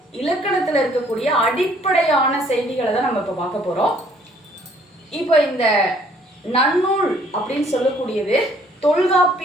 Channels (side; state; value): both; normal; correlation 0.61